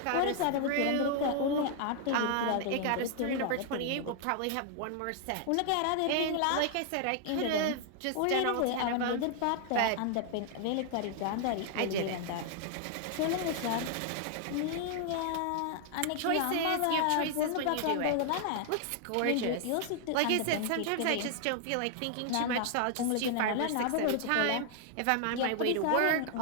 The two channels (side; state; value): both; different; correlation 0.00